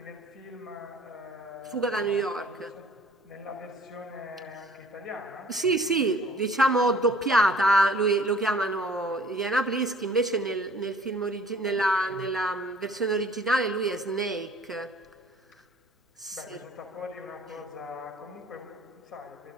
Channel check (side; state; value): both; normal; correlation 0.52